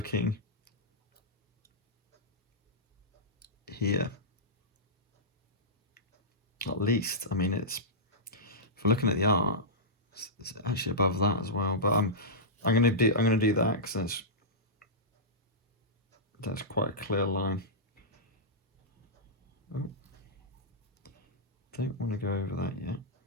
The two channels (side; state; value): both; normal; correlation -0.14